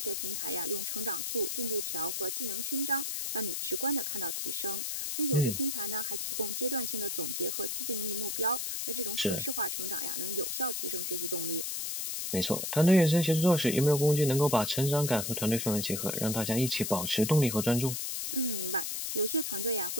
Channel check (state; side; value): noise; left; hiss, 2 dB below the sound